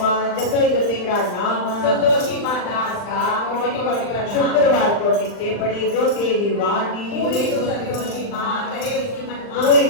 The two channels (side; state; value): right; late; 39 ms